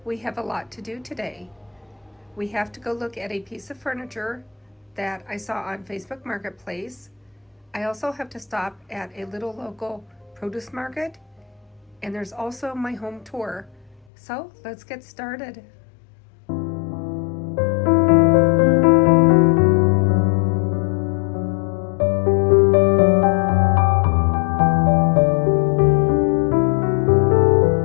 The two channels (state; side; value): drops out; right; at 14.1 s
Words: we have a lot to do today. We have to go look at a piece of furniture that I saw on Facebook Marketplace. I also have to stop at a little local produce market, and there's also my home tour. So let's get started.